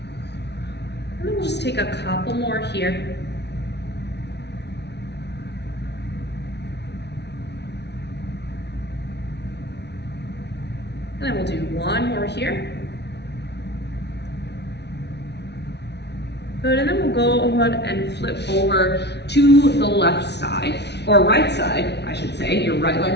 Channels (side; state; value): right; late; 0.50 ms